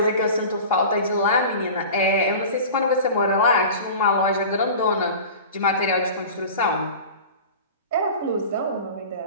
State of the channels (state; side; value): inverted; both; correlation -0.36